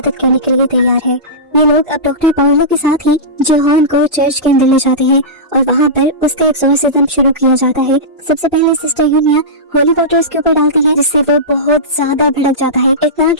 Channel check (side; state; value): both; normal; correlation -0.17